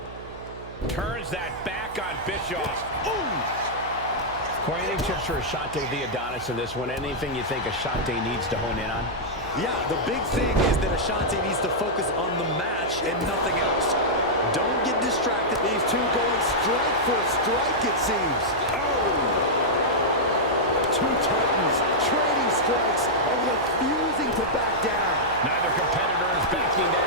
Turns that back on Bischoff. Ooh! Corey, any tips for Ashante the Adonis in this one? Anything you think Ashante needs to hone in on? Yeah, the big thing is that Ashante needs to focus on the match and nothing else. Don't get distracted. These two going strike for strike, it seems. Oh! Two Titans trading strikes and refusing to back down. Neither competitor is backing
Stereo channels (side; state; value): right; noise; hum, 16 dB below the sound